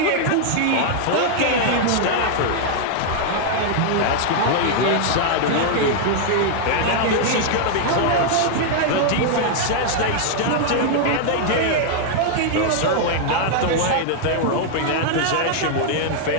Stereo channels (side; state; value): both; different; correlation -0.01